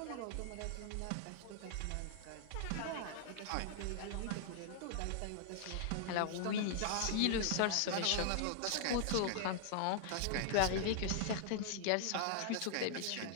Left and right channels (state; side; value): different; both; correlation -0.01